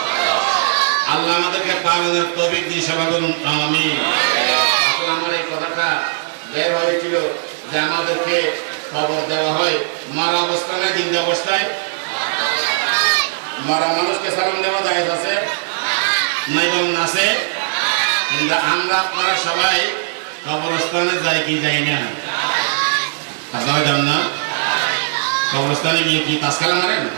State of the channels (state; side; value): silent; left; digital silence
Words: আল্লাহ আমাদেরকে পালনের তৌফিক দিয়ে সেবা করুন, আমিন। আসলে আমার এই কথাটা বের হয়েছিল যে আমাদেরকে খবর দেওয়া হয় মারা অবস্থায়, জিন্দা অবস্থায়। মারা মানুষকে সালাম দেওয়া জায়েজ আছে নাই বলুন? আছে। কিন্তু আমরা আপনারা সবাই কবরস্থানে যাই কি যাই না? আপনারা যান না? কবরস্থানে গিয়ে কি তাসকালা মারেন?